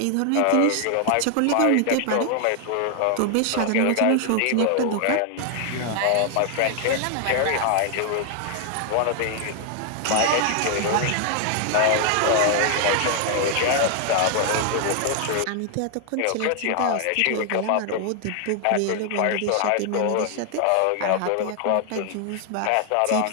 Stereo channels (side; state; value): both; different; correlation 0.00